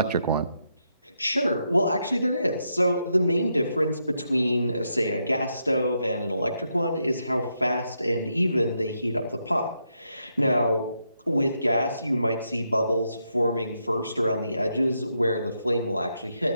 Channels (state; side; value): inverted; both; correlation -0.81